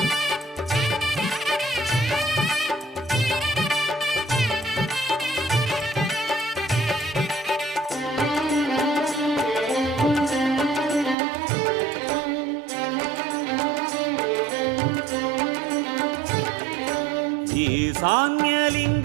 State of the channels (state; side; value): drops out; left; at 11.2 s